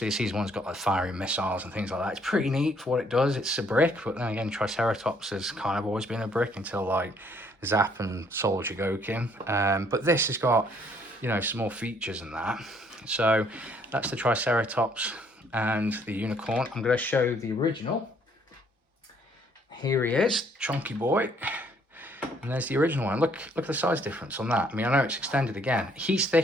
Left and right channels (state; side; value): normal; both; correlation 0.65